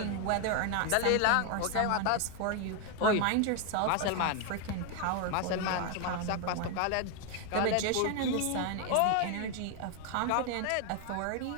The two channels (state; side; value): different; both; correlation 0.01